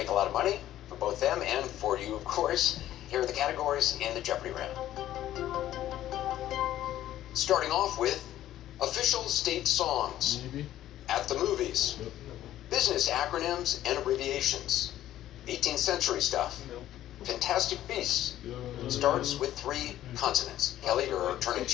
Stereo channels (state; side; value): quieter; right; 13.0 dB